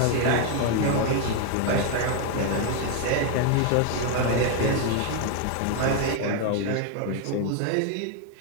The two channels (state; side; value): different; both; correlation 0.01